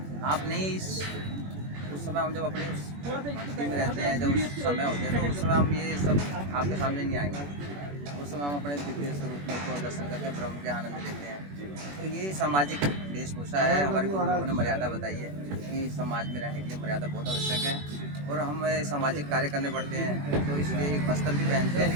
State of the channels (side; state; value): left; late; 21 ms